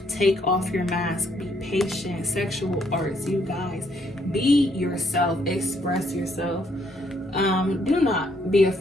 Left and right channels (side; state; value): both; normal; correlation 0.70